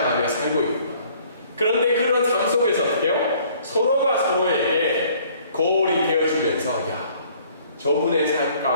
살고 있구나. 그런데 그런 삶 속에서 어떻게 해요? 서로가 서로에게 거울이 되어주면서 야, 저분의 삶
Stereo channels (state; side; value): inverted; both; correlation -0.58